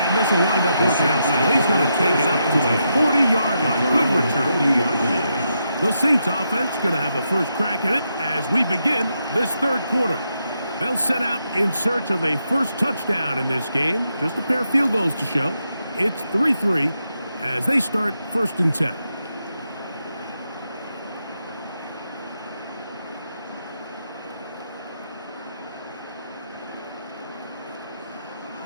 this will wind up working out well. He's going to take it up to the 40-yard line. Good return. The Saints offense going to have a first crack at it as we begin this third quarter. They'll set out in search of a first touchdown in this game. Just a pair of field goals to show. It's 3-3 as they start first and 10.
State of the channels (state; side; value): inverted; both; correlation -0.82